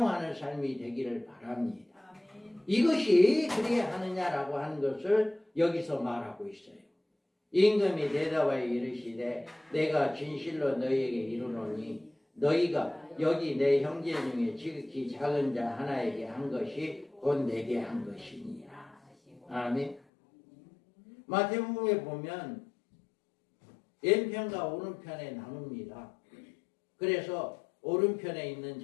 삶이 되기를 바랍니다. 이것이 그래야 하느냐라고 하는 것을 여기서 말하고 있어요. 임금이 대답하여 이르시되 내가 진실로 너희에게 이르노니 너희가 여기 내 형제 중에 지극히 작은 자 하나에게 한 것이 곧 내게 한 것이니라. 아멘. 마태복음에 보면 왼편과 오른편에 나눕니다. 그래서 오른편에 있는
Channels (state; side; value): drops out; right; at 20.0 s